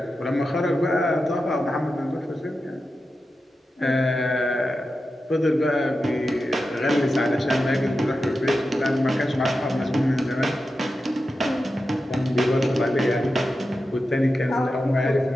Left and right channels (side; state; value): both; normal; correlation 0.91